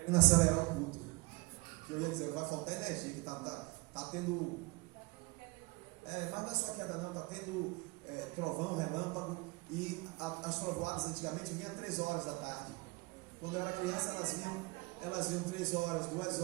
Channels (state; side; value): quieter; left; 26.1 dB